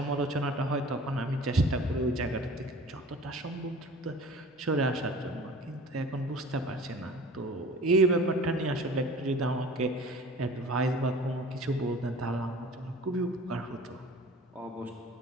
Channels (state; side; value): normal; both; correlation 0.43